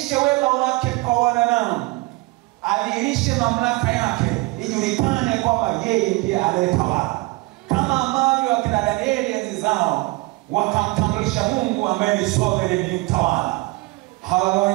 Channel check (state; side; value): quieter; left; 24.0 dB